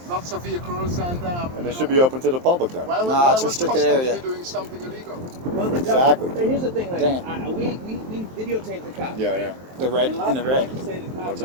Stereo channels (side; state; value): left; late; 23 ms